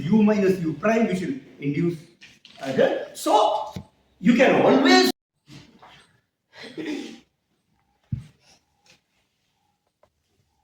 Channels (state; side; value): identical; both; correlation 1.00